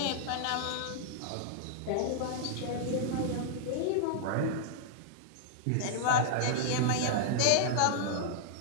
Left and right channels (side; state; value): both; different; correlation -0.01